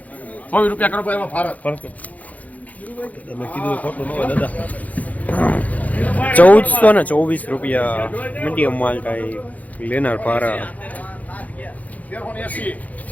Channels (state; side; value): late; right; 0.075 ms